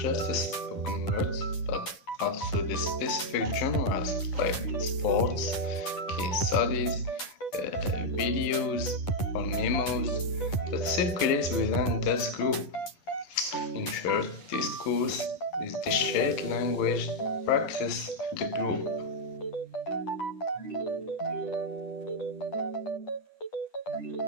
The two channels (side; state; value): right; late; 10 ms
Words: the spoken words, but also the specific genres like sports, case studies, videos, or memos that circulate within this group. In short, discourse is the shared language practice of the group.